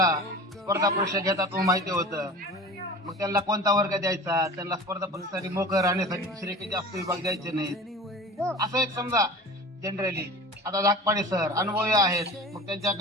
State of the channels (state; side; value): normal; both; correlation 0.38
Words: स्पर्धा परीक्षा घेतात माहिती होतं. मग त्यांना कोणता वर्ग द्यायचा, त्यांना स्पर्धा परीक्षेसाठी मोकळं राहण्यासाठी दुसरे काही जास्त विभाग द्यायचे नाहीत, असं एक समजा जनरली. आता धाकपाडे सर अनुभवी आहेत, मग